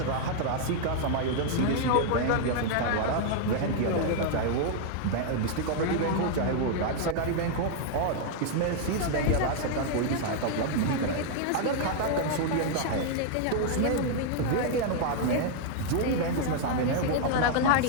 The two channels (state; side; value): different; both; correlation 0.00